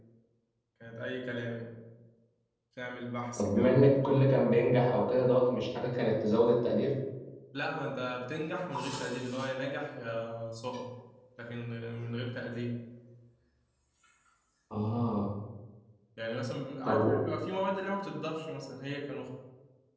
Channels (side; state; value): both; identical; correlation 1.00